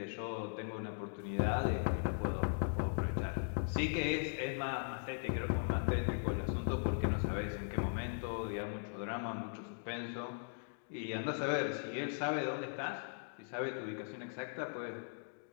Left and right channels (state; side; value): silent; right; digital silence